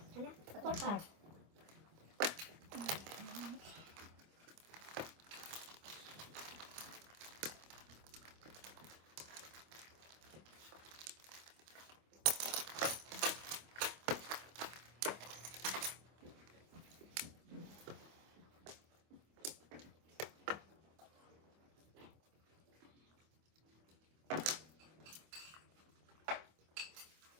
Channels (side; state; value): left; late; 25 ms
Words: Ano? 4 car.